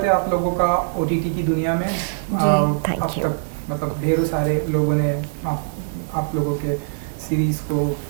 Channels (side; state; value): left; silent; 64 dB below the other